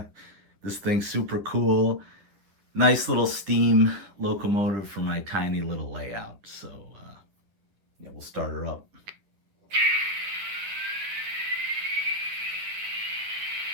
this thing's super cool. Nice little steam locomotive for my tiny little layout. So yeah, we'll start her up.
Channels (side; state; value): left; late; 10 ms